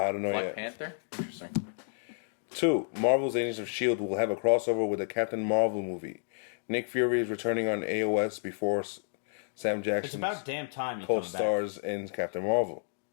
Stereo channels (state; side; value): silent; right; digital silence